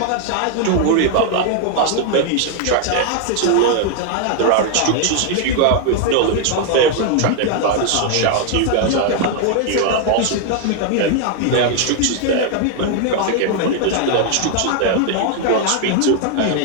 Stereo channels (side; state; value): both; different; correlation 0.00